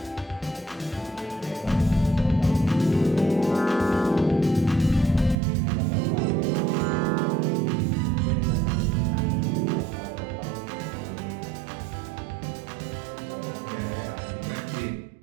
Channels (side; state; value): left; drops out; at 5.4 s